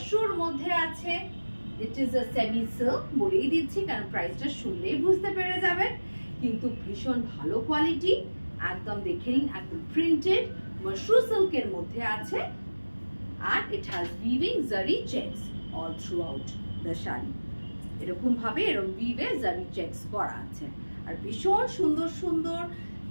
মধ্যে আছে। It is a semi silk, বলেই দিচ্ছি কারণ প্রাইসটা শুনলেই বুঝতে পেরে যাবেন। কিন্তু ভীষণ ভালো কোয়ালিটি, একদম দেখে নিন, একদম প্রিন্টেড মাশরু সিল্কের মধ্যে আছে। And it has weaving zari checks all throughout the shari. এরকম ভাবে weave zari checks করা আছে। আর ভীষণ সুন্দর সুন্দর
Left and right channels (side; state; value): both; inverted; correlation -1.00